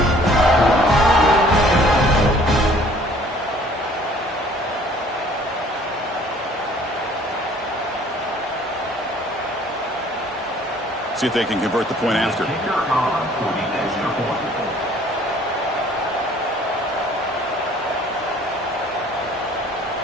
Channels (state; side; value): normal; both; correlation 0.55